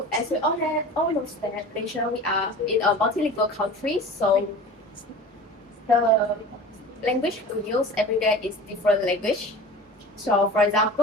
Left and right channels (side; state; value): both; normal; correlation 0.37